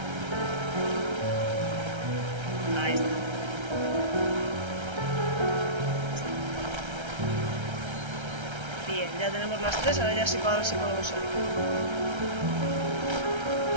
Ahí está. Bien, ya tenemos las tres, ahora ya sí para ver si podemos salir.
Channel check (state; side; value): late; left; 1.3 ms